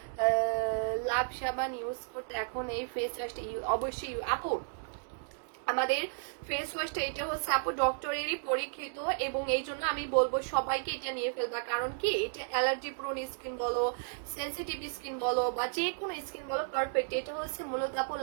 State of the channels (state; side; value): silent; left; digital silence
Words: লাভ সাবান ইউজ করতে, এখন এই ফেস ওয়াশটা অবশ্যই আপু আমাদের ফেস ওয়াশটা এটা হচ্ছে আপু ডক্টরেরই পরীক্ষিত, এবং এই জন্য আমি বলবো সবাইকে এটা নিয়ে ফেলবা। কারণ কি এটা অ্যালার্জি প্রোন স্কিন বলো, সেনসিটিভ স্কিন বলো, বা যে কোনো স্কিন বলো, পারফেক্ট। এটা হচ্ছে মূলত আপু